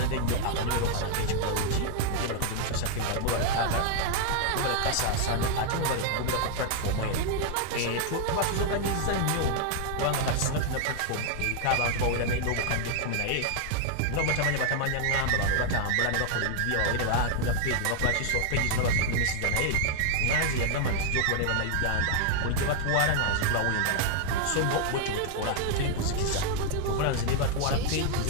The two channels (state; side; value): different; both; correlation 0.00